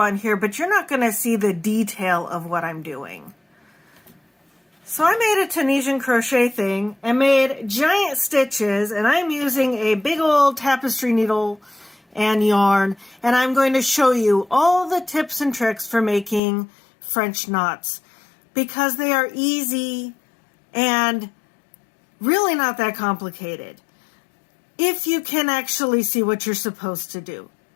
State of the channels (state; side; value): drops out; right; at 16.4 s